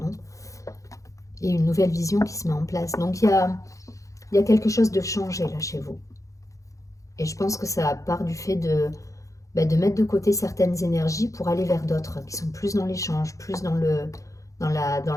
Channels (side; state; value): right; late; 0.16 ms